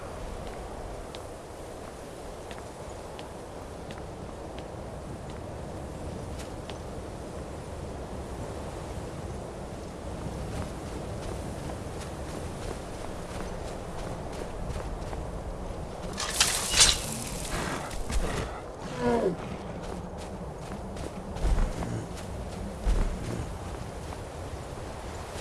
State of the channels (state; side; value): identical; both; correlation 1.00